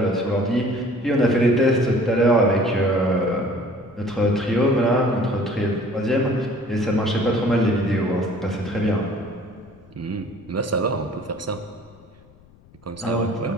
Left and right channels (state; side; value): noise; left; rumble, 27 dB below the sound